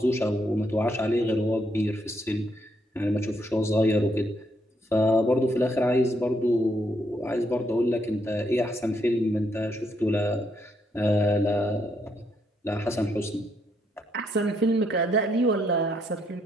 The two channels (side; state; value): both; normal; correlation 0.75